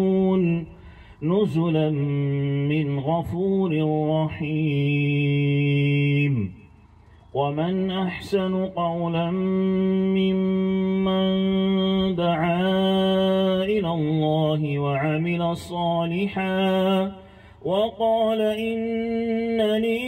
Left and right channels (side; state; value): both; identical; correlation 1.00